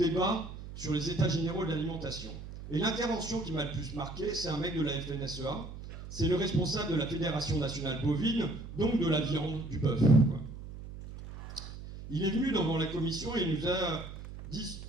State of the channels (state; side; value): noise; right; hum, 11 dB below the sound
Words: sur les états généraux de l'alimentation. Et l'intervention qui m'a le plus marqué, c'est un mec de la FNSEA, c'est le responsable de la Fédération nationale bovine, donc de la viande, du bœuf. Il est venu devant la Commission et il nous a